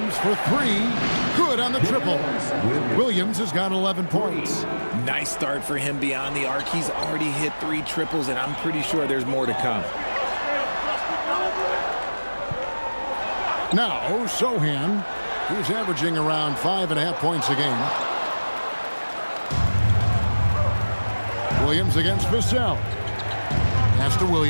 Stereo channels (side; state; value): both; inverted; correlation -1.00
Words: for 3. Good on the triple. Williams has got 11 points. Nice start for him beyond the arc. He's already hit 3 triples, and I'm pretty sure there's more to come. Now, Sohan, who's averaging around 5.5 points a game. Williams against Vassell. Pass to